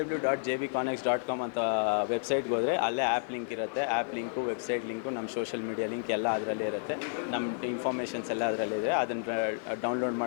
ಅಂತ ವೆಬ್ಸೈಟ್ಗೆ ಹೋದರೆ ಅಲ್ಲೇ ಆ್ಯಪ್ ಲಿಂಕ್ ಇರುತ್ತೆ. ಆ್ಯಪ್ ಲಿಂಕು, ವೆಬ್ಸೈಟ್ ಲಿಂಕು, ನಮ್ಮ ಸೋಷಲ್ ಮೀಡಿಯಾ ಲಿಂಕ್ ಎಲ್ಲ ಅದರಲ್ಲೇ ಇರುತ್ತೆ. ನಮ್ಮ ಇನ್ಫಾರ್ಮೇಷನ್ಸ್ ಎಲ್ಲ ಅದರಲ್ಲಿದೆ. ಅದನ್ನು ಡೌನ್ಲೋಡ್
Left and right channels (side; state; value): right; silent; digital silence